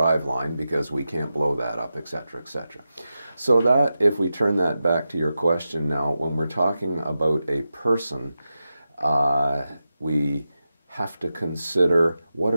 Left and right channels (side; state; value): both; inverted; correlation -0.91